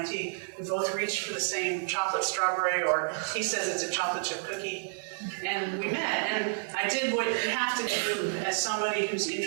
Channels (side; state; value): left; silent; digital silence